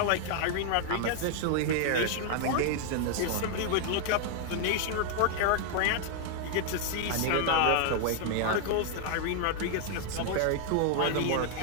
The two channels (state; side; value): different; both; correlation 0.00